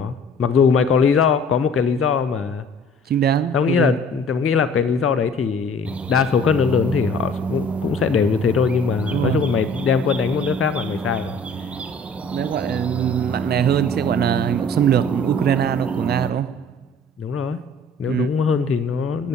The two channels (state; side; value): normal; both; correlation 0.50